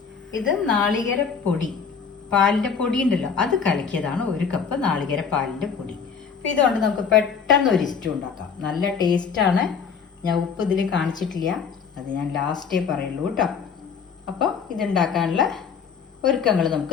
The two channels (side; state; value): right; quieter; 6.3 dB